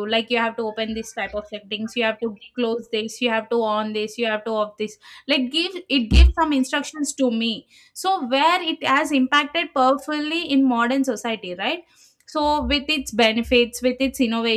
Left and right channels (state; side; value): identical; both; correlation 1.00